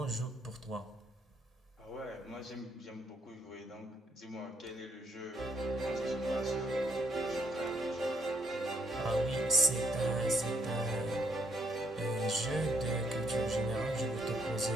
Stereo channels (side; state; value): both; normal; correlation 0.73